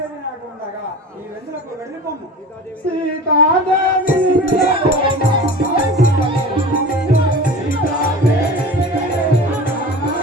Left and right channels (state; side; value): normal; both; correlation 0.36